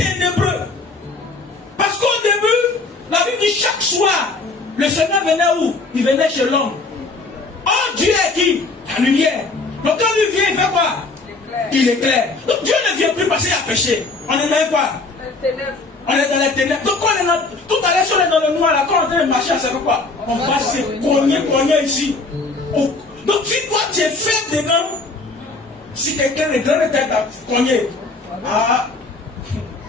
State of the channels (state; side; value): quieter; right; 3.6 dB